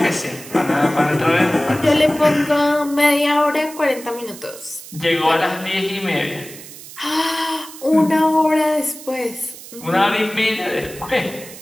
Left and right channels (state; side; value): noise; right; hiss, 16 dB below the sound